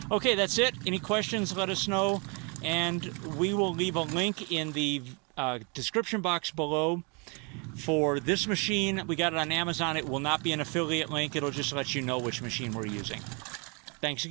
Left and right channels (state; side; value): quieter; left; 33.1 dB